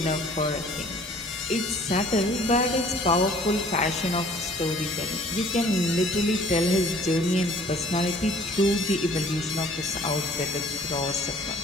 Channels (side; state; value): both; normal; correlation 0.54